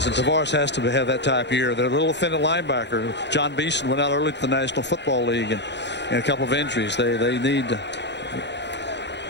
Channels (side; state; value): right; late; 0.51 ms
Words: and Tavares has to have that type of year. They're a little offended linebacker. John Beeson went out early to the National Football League and a couple of injuries. They need to.